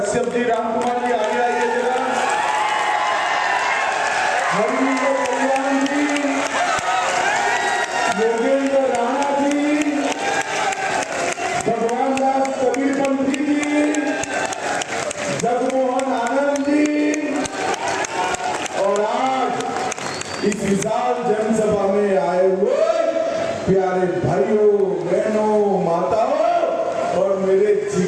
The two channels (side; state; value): both; identical; correlation 1.00